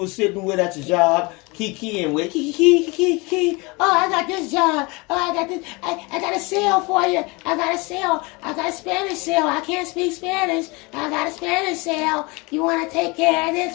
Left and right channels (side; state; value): right; quieter; 26.6 dB